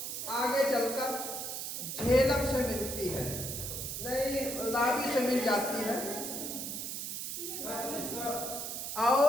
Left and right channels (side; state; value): right; noise; hiss, 4 dB below the sound